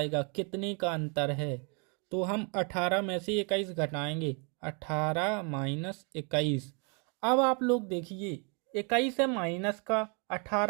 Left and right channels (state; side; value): quieter; left; 35.6 dB